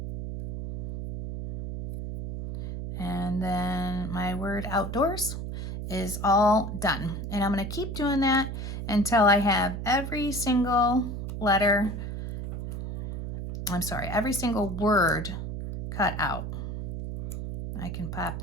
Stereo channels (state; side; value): noise; right; hum, 5 dB below the sound